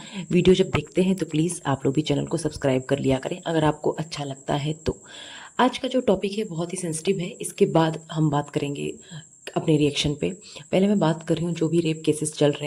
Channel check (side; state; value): both; identical; correlation 1.00